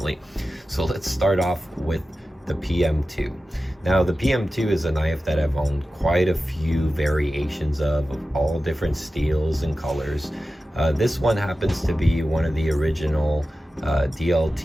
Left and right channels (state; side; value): normal; both; correlation 0.94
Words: So let's start off with the PM2. Now the PM2 is a knife that I've owned quite a few variations of all different steels and colors. This one happens to be one of the original